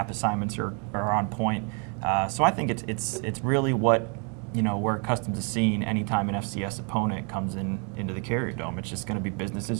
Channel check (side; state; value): left; quieter; 37.1 dB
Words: assignments are on point. So I think it's really what we're accustomed to seeing anytime an FCS opponent comes into the Carrier Dome. It's just going to be business